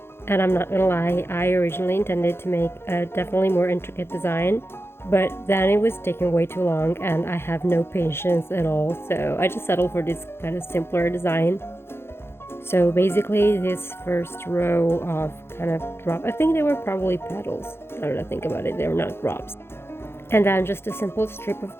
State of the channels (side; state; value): right; late; 0.12 ms